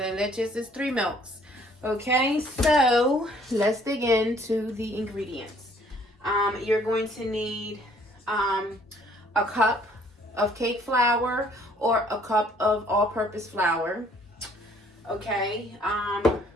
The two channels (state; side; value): normal; both; correlation 0.60